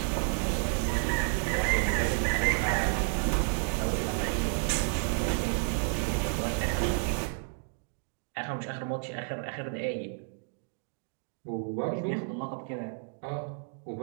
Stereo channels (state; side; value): silent; left; 57 dB below the other